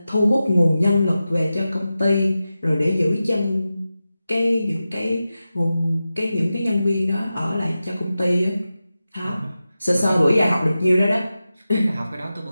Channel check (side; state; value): both; inverted; correlation -0.93